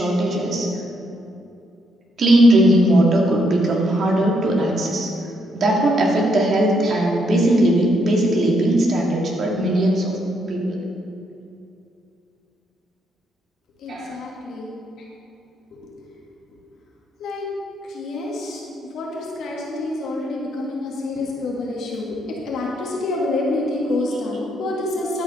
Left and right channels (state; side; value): normal; both; correlation 0.75